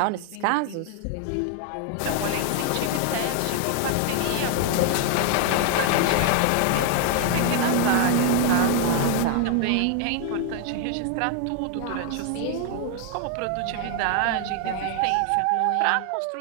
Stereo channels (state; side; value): different; both; correlation 0.00